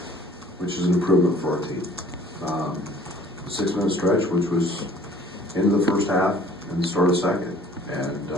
which is an improvement for our team. 6-minute stretch, which was into the first half and the start of second, and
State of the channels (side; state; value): both; normal; correlation 0.53